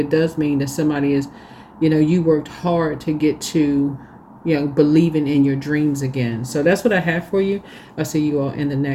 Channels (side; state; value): both; identical; correlation 1.00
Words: does mean that somebody is, you worked hard to get to, believing in your dreams again. So that's what I have for you. I'll see you all in the